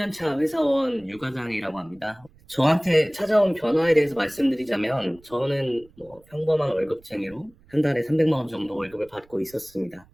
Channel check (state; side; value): noise; right; rumble, 28 dB below the sound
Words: 회사원 유과장이라고 합니다. 저한테 찾아온 변화에 대해서 말씀드리자면 저는 평범한 월급쟁이로 한 달에 300만 원 정도 월급을 받고 있었습니다.